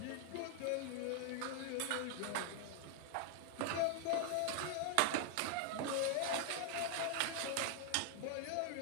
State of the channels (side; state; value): both; different; correlation 0.00